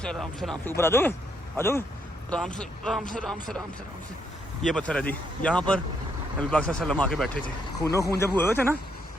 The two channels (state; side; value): normal; both; correlation 0.75